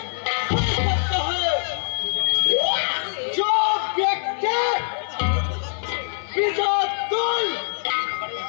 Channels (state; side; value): silent; right; digital silence